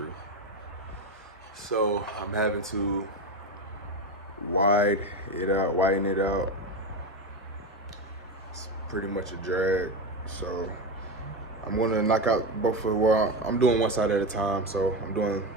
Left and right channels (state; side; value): normal; both; correlation 0.16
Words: So I'm having to widen it out. It's pretty much a drag. So I'm gonna knock out both of, well, I'm doing one side at a time. So I'm doing